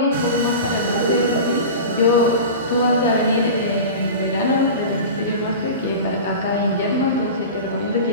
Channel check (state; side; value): inverted; both; correlation -0.32